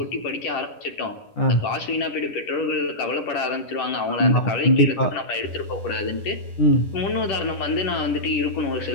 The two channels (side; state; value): right; late; 10 ms